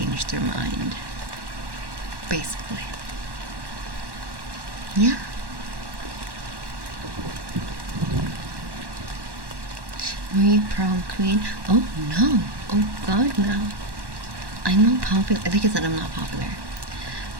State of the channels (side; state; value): left; late; 1.1 ms